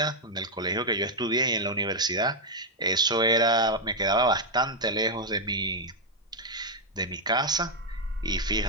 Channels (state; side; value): normal; both; correlation -0.01